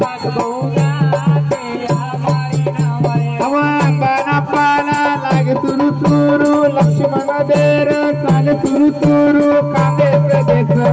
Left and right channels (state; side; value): identical; both; correlation 1.00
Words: अंबाना पाला लागे तुरु तुरु लक्ष्मण देर चाले तुरु तुरु कांदे प्रदेश